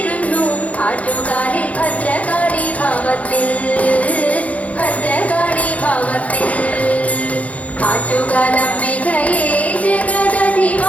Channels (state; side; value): late; right; 0.068 ms